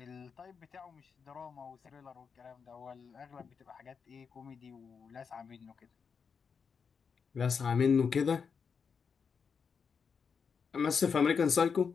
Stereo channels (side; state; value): right; quieter; 6.0 dB